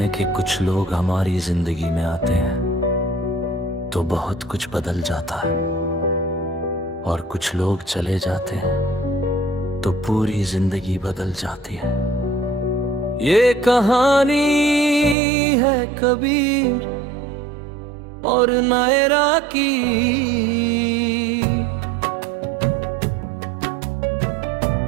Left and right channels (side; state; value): left; drops out; at 15.2 s